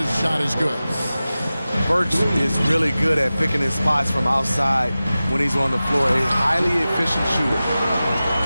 shot is good. Burks is really good at picking his spots from outside when he's on the floor. A highly efficient shooter.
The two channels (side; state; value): both; inverted; correlation -0.96